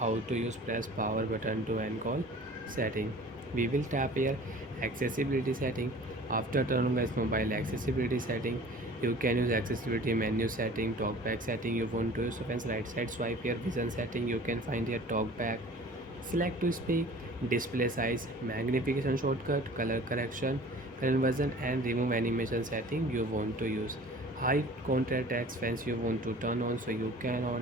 to use press power button to end call setting, we will tap here accessibility setting. After turn on guys mobile accessibility setting, you can use accessibility menu setting, talkback setting you want to use. So friends, right side swipe here, vision setting, you can find here talkback, select to speak, display size, magnification shortcut, color correction, conversion, and remove animation setting you want to use. High contrast text fence you want to turn on, so you can on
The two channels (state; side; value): normal; both; correlation 0.45